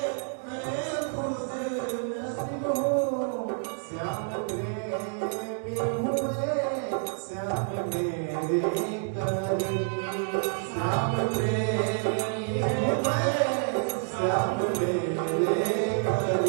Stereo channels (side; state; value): left; silent; digital silence